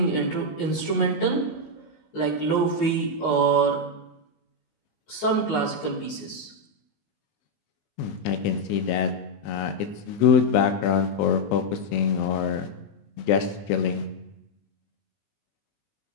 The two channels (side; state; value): right; late; 19 ms